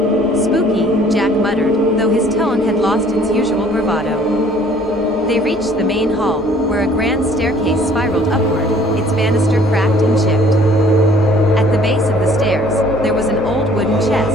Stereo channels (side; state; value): both; normal; correlation 0.56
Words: "Spooky," Jack muttered, though his tone had lost its usual bravado. They reached the main hall, where a grand staircase spiraled upward, its banister cracked and chipped. At the base of the stairs, there was an old wooden